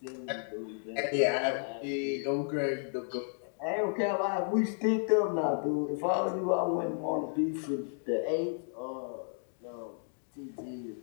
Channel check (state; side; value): silent; right; digital silence